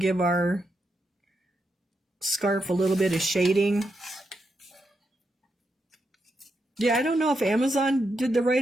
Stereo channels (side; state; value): both; normal; correlation 0.84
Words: our scarf a little bit of shading. Yeah, I don't know if Amazon did the